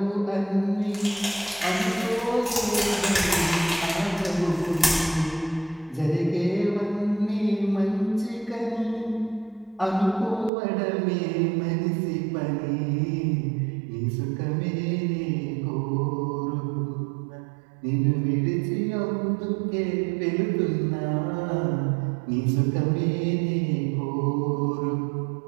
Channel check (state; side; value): drops out; left; at 10.5 s